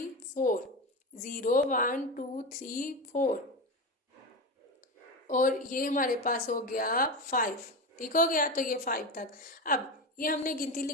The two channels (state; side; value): normal; both; correlation 0.20